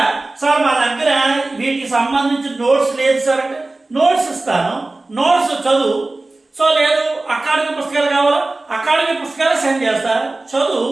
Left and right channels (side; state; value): left; quieter; 3.0 dB